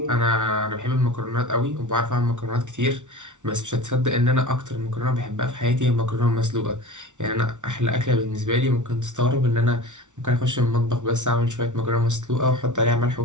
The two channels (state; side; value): late; left; 0.86 ms